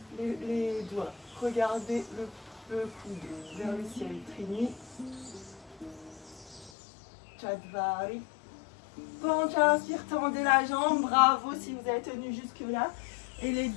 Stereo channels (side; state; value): right; drops out; at 6.7 s